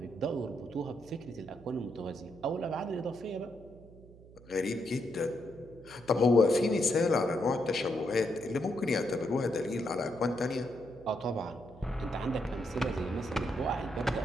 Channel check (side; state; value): right; noise; hum, 21 dB below the sound